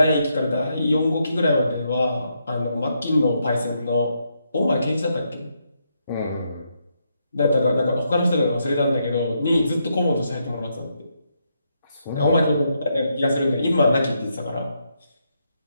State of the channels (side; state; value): both; inverted; correlation -0.79